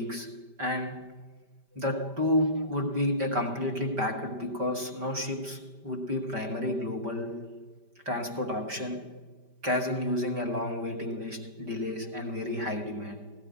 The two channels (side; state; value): left; late; 5.1 ms